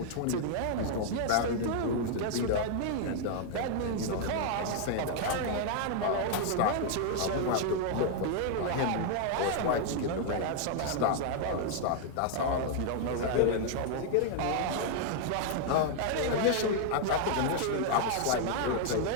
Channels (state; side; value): different; both; correlation 0.00